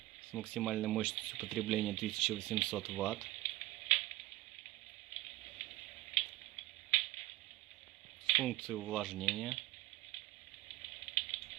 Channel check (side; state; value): left; quieter; 17.9 dB